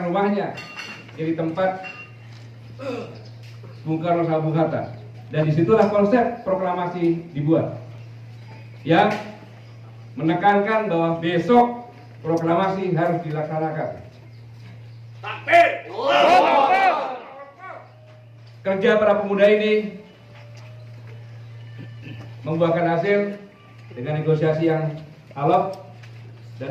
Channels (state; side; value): identical; both; correlation 1.00